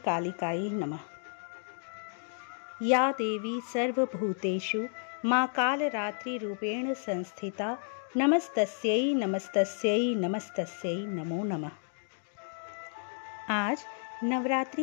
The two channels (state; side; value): silent; right; digital silence